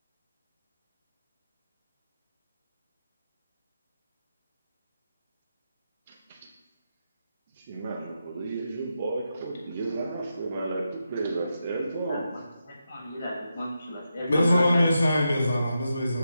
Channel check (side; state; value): both; inverted; correlation -0.86